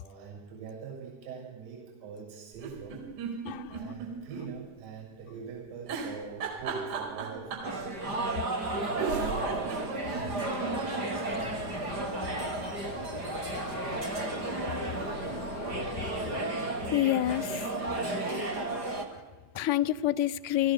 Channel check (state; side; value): late; left; 5.0 ms